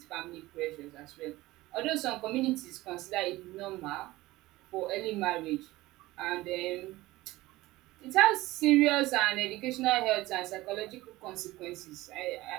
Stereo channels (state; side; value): quieter; left; 18.6 dB